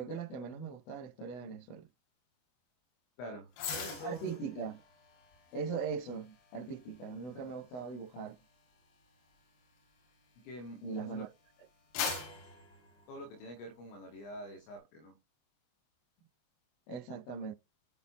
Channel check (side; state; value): right; late; 25 ms